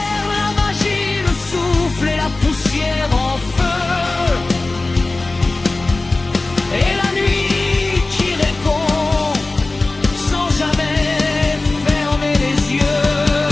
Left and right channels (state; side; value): quieter; right; 3.2 dB